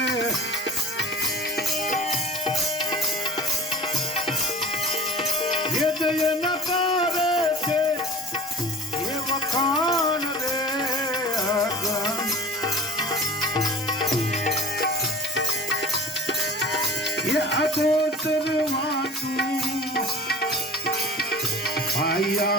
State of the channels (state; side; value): normal; both; correlation 0.40